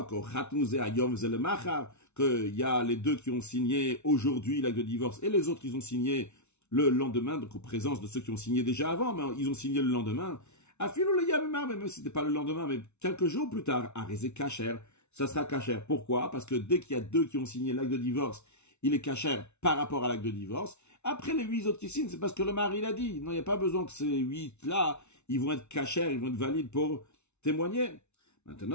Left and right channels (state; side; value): late; right; 0.82 ms